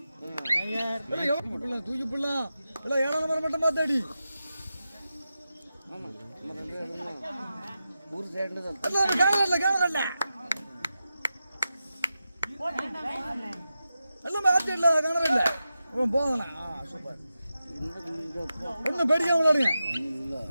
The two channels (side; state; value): both; inverted; correlation -0.90